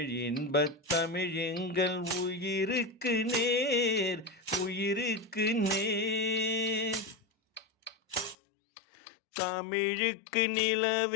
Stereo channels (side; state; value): right; drops out; at 8.3 s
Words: இன்பத் தமிழ் எங்கள் உயிருக்கு நேர், உயிருக்கு நேர். தமிழுக்கு